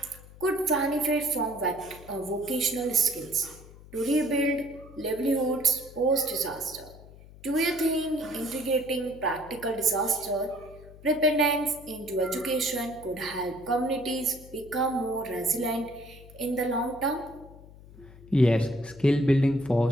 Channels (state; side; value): noise; left; hum, 20 dB below the sound